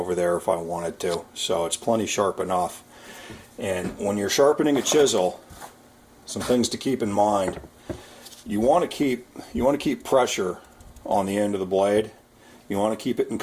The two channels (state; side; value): identical; both; correlation 1.00